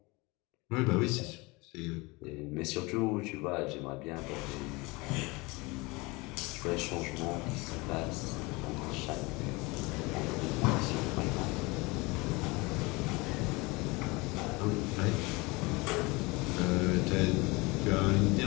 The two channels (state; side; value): quieter; right; 24.9 dB